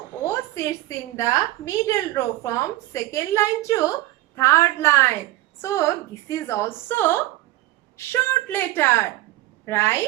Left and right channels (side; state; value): left; quieter; 17.2 dB